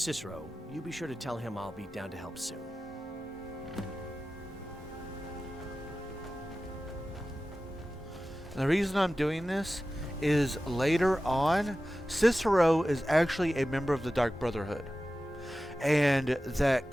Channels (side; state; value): both; normal; correlation 0.95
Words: you be sure to tell him I'll be down to help soon. And the reason I'm doing this is later on, Cicero is actually a member of the Dark Brotherhood. And that